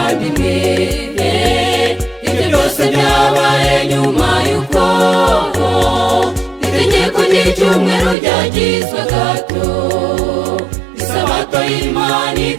ibyo byose byabaye nyuma y'uko itegeko ry'icyumweru ryagizwe gato, isabato y'Imana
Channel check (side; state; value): left; drops out; at 8.2 s